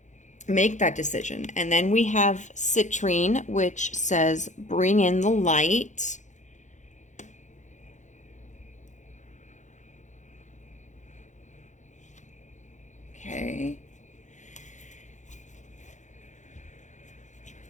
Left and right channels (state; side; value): late; right; 0.35 ms